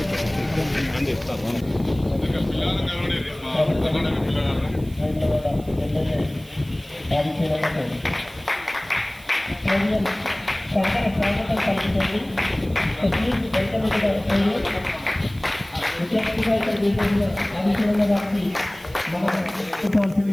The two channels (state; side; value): noise; right; hiss, 23 dB below the sound